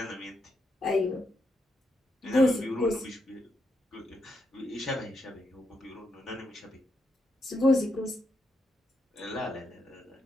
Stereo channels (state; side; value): normal; both; correlation 0.82